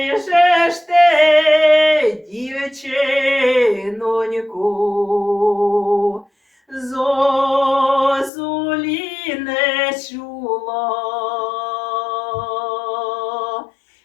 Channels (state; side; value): drops out; right; at 8.3 s